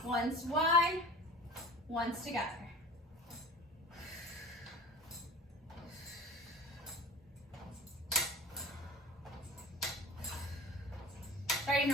Once wide, once together. Starting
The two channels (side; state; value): both; normal; correlation 0.37